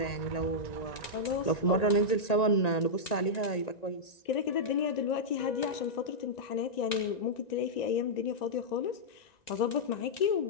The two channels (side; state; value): right; late; 1.9 ms